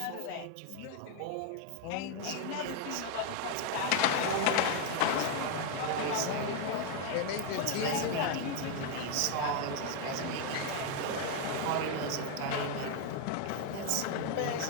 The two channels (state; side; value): different; both; correlation 0.01